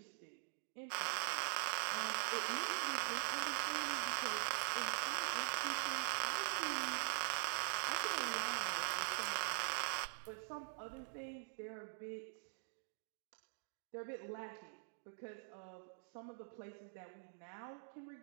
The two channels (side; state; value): left; silent; digital silence